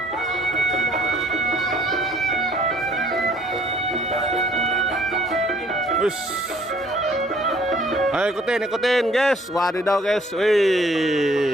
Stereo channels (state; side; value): normal; both; correlation 0.59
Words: Wis. Ayo ikutin guys. Wadidaw guys.